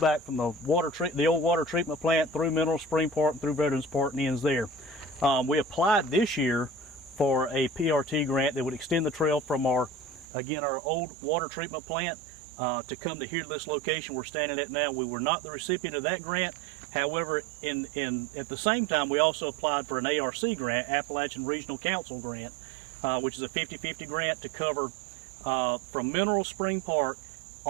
from the old water treatment plant through Mineral Spring Park, through Veterans Park, and ends there. We applied this year for a PRT grant that would extend the trail from our old water treatment plant to come to here to this location we're standing at now. We were not the recipient of that grant. However, at the same time, we also applied for an ARC grant, Appalachian Regional Council grant, which is a 50-50 grant to cover from Mineral Spring Park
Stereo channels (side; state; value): left; drops out; at 10.2 s